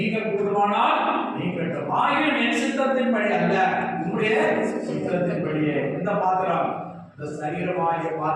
கூடுமானால் நீங்கள் ஆகியும் என் சித்தத்தின்படி அல்ல, உங்களுடைய சித்தத்தின்படியே. இந்த பாத்திரம், இந்த சரீரமாகிய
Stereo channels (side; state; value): both; identical; correlation 1.00